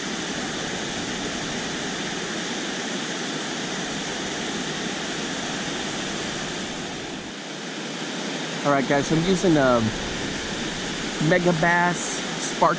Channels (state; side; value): identical; both; correlation 1.00